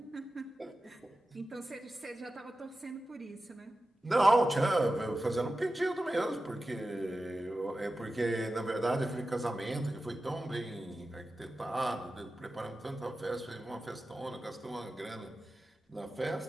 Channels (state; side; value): normal; both; correlation 0.93